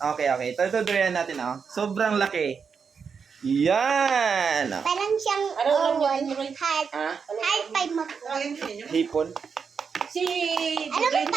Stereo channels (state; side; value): quieter; left; 6.0 dB